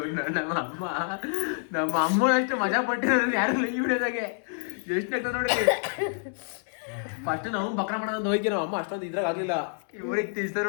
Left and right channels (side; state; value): right; silent; 60 dB below the other